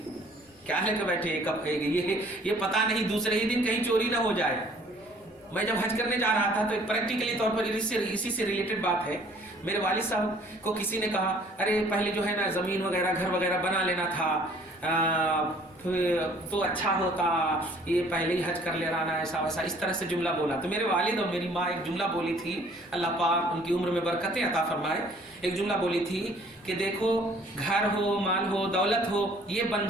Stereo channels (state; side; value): normal; both; correlation 0.56